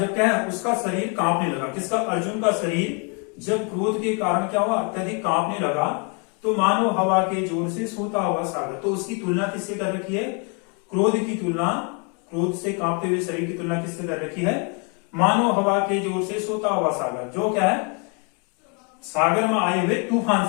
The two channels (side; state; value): right; quieter; 35.6 dB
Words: क्या है उसका शरीर कांपने लगा, किसका, अर्जुन का शरीर जब क्रोध के कारण क्या हुआ, अत्यधिक कांपने लगा, तो मानो हवा के जोर से सोता हुआ सागर। तो उसकी तुलना किससे कर रखी है, क्रोध की तुलना, क्रोध से कांपते हुए शरीर की तुलना किससे कर रखी है, मानो हवा के जोर से सोता हुआ सागर, जो क्या है सागर में आए हुए तूफान